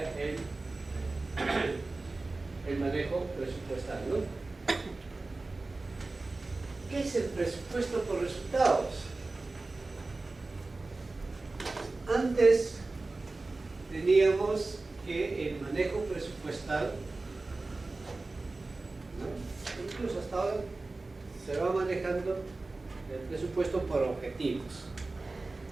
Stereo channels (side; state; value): left; quieter; 3.4 dB